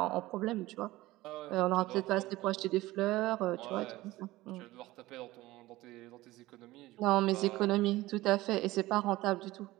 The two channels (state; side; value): quieter; left; 18.1 dB